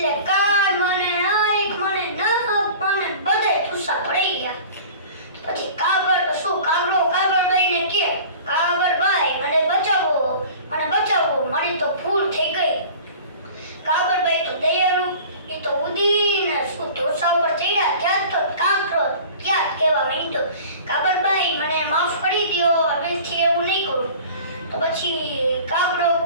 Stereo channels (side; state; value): both; inverted; correlation -0.42